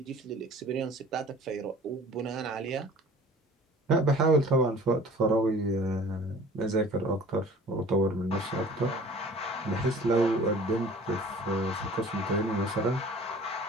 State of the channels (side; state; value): both; normal; correlation 0.47